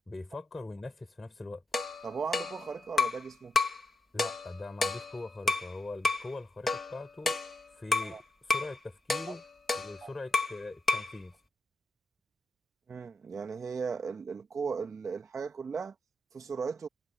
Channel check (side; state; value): both; normal; correlation 0.83